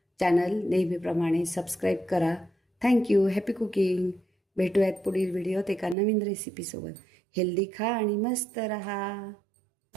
चॅनल नेहमीप्रमाणे सबस्क्राईब करा. थँक्यू. Happy cooking. भेटूयात पुढील व्हिडिओत एका नवीन रेसिपीसोबत. हेल्दी खा आणि मस्त रहा.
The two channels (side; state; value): left; drops out; at 6.0 s